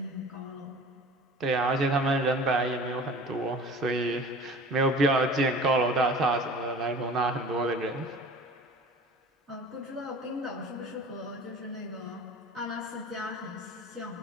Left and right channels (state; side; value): normal; both; correlation 0.42